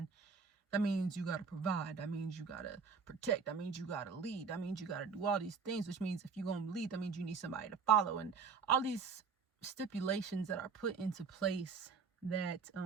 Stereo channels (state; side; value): quieter; left; 5.5 dB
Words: that means you got to provide. That means you got to protect. That means you got to lead. That means you got to do all these things, which means if you're going to lead, that means you need somebody to follow. And all these stipulations that are put into place that